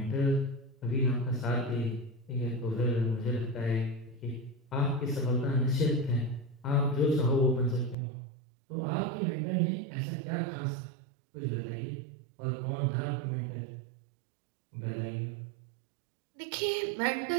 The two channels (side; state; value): left; drops out; at 8.0 s